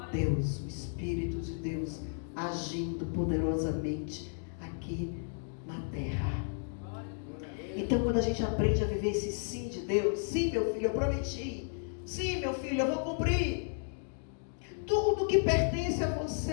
Deus, o Espírito de Deus, agindo poderosamente aqui na terra. Então, quando a gente aprende a viver esse sim de Deus, sim, meu filho, eu prometi. Sim, meu filho, eu vou cumprir. Tudo que pertence a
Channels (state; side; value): silent; right; digital silence